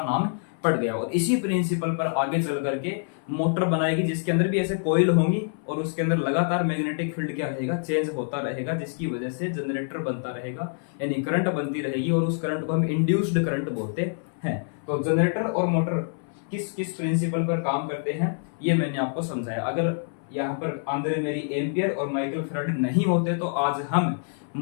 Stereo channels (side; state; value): right; silent; 61 dB below the other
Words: नाम पड़ गया। और इसी प्रिंसिपल पर आगे चल करके मोटर बनाएगी जिसके अंदर भी ऐसे कॉइल होंगी और उसके अंदर लगातार मैग्नेटिक फील्ड क्या रहेगा, चेंज होता रहेगा, जिसकी वजह से जनरेटर बनता रहेगा, यानी करंट बनती रहेगी, और उस करंट को हम इंड्यूस्ड करंट बोलते हैं। तो जनरेटर और मोटर किस किस प्रिंसिपल पर काम करते हैं ये मैंने आपको समझाया। अगर यहाँ पर आंद्रे मेरी एम्पियर और माइकल फैराडे नहीं होते तो आज हम